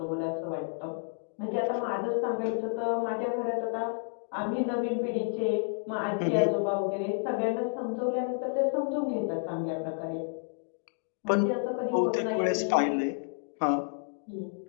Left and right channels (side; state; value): right; silent; digital silence